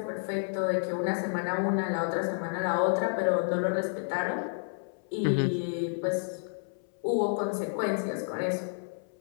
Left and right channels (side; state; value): right; silent; 58 dB below the other